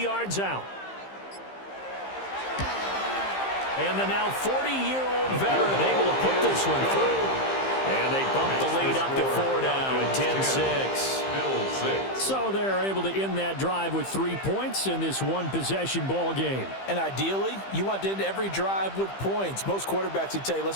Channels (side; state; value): right; late; 15 ms